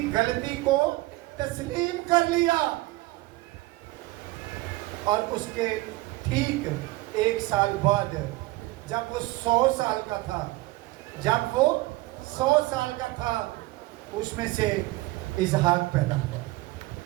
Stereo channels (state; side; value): quieter; left; 20.2 dB